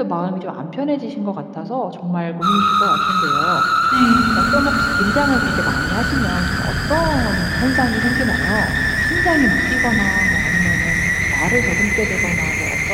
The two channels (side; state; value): both; identical; correlation 1.00